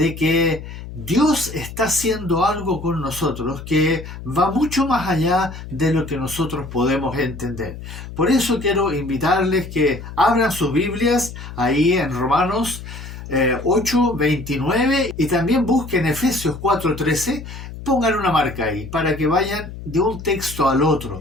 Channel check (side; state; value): left; noise; hum, 12 dB below the sound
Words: que Dios está haciendo algo con nosotros que va mucho más allá de lo que nosotros podemos entender. Por eso quiero invitarles que abran sus Biblias ahí en Romanos 8:29 y también busquen Efesios 4:13. Pongan una marca ahí para que vayan de un texto al otro,